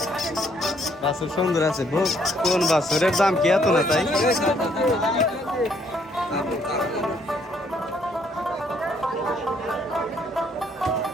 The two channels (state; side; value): normal; both; correlation 0.68